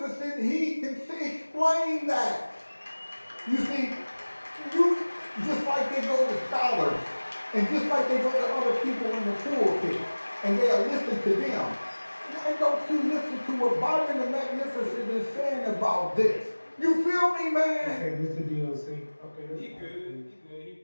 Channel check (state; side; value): inverted; both; correlation -1.00